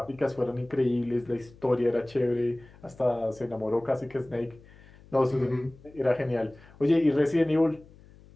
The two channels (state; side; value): noise; left; hum, 24 dB below the sound